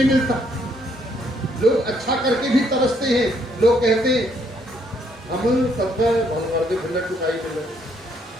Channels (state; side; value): normal; both; correlation 0.70